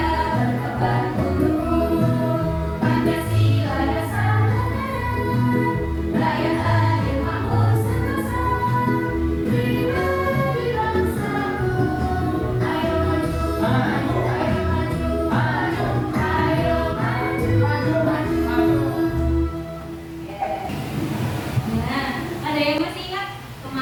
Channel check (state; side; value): identical; both; correlation 1.00